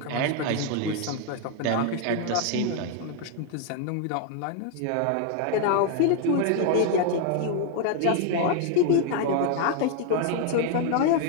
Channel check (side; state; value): both; different; correlation 0.00